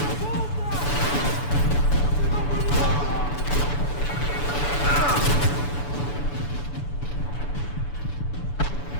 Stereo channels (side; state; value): right; late; 6.9 ms